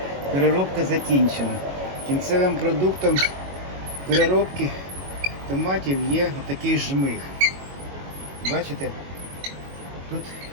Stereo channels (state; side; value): late; left; 22 ms